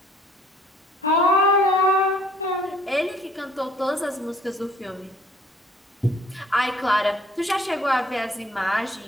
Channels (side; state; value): both; normal; correlation 0.58